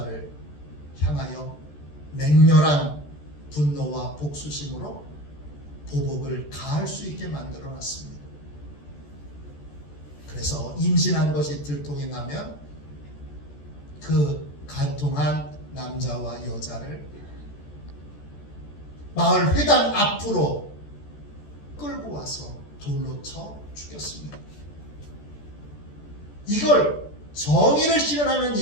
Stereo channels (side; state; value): right; late; 14 ms